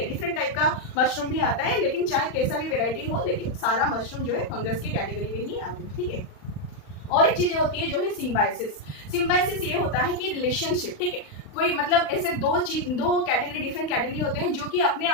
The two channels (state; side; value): late; right; 39 ms